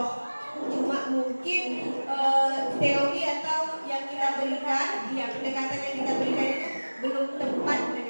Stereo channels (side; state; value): both; inverted; correlation -1.00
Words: Cuma mungkin teori atau yang kita berikan, pendekatan yang kita berikan itu belum tepat